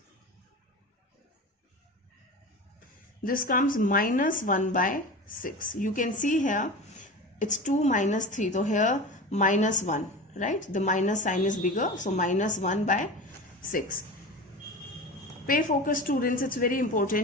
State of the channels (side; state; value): both; normal; correlation 0.31